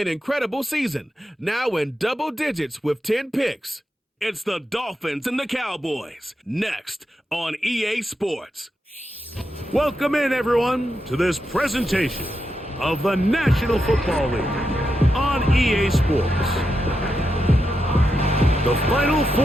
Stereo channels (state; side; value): normal; both; correlation 0.86